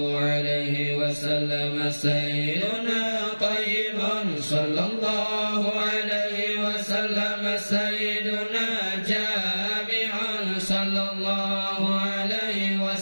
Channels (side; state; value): both; inverted; correlation -1.00